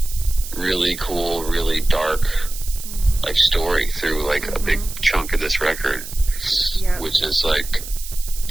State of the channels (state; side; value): noise; right; hiss, 11 dB below the sound